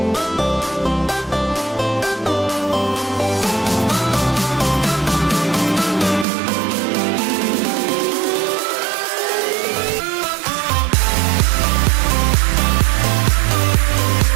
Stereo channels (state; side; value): drops out; left; at 6.2 s